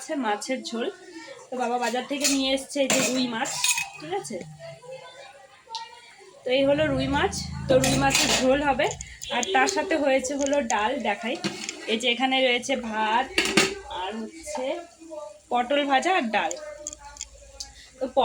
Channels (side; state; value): both; identical; correlation 1.00